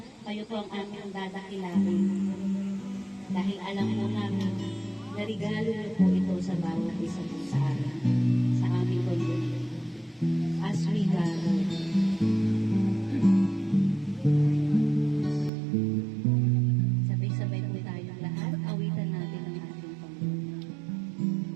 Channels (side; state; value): left; drops out; at 15.5 s